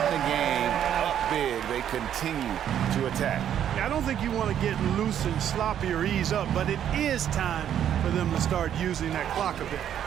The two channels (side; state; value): left; quieter; 9.9 dB